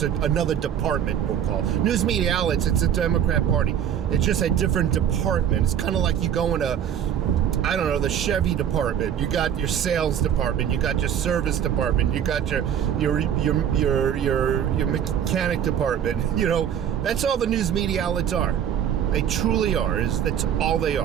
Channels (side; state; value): left; quieter; 9.2 dB